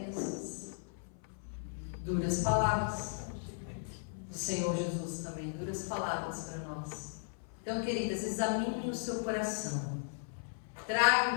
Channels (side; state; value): right; silent; 54 dB below the other